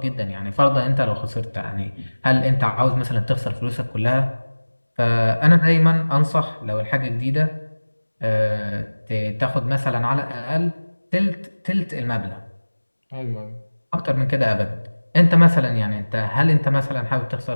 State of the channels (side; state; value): both; inverted; correlation -1.00